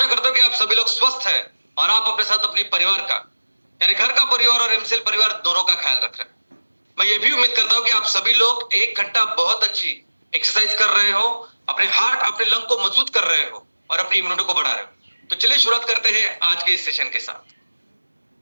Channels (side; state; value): both; inverted; correlation -1.00